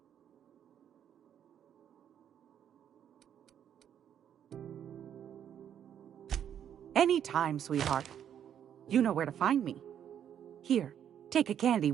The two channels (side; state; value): left; quieter; 9.4 dB